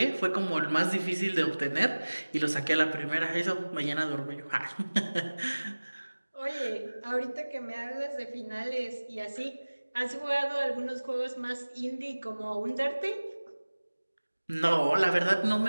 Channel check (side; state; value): both; inverted; correlation -1.00